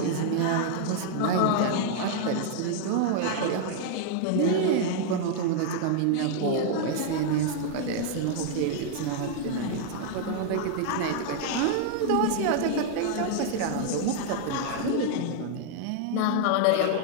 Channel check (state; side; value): different; both; correlation 0.00